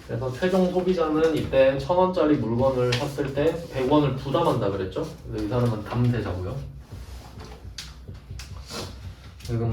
그래서 최종 소비자는 이때 1,000원짜리 물건을 샀을 때 100원을 부담한다 그랬죠? 근데 이 사람은 담대자고요.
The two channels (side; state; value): both; identical; correlation 1.00